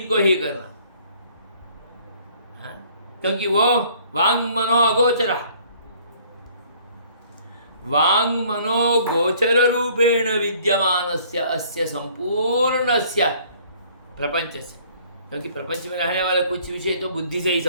ही करना, क्योंकि वो वांग मनो अगोचरः, वांग मनो गोचर रूपेण विद्यमानस्य अस्य संपूर्णस्य प्रपंचस्य, क्योंकि प्रपंच में रहने वाला कुछ विषय तो बुद्धि से ही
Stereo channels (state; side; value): inverted; both; correlation -0.57